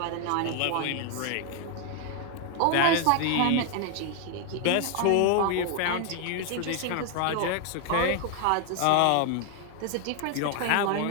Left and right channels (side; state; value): both; different; correlation 0.00